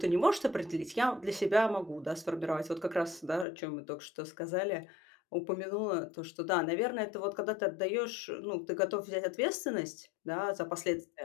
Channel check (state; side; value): drops out; right; at 3.5 s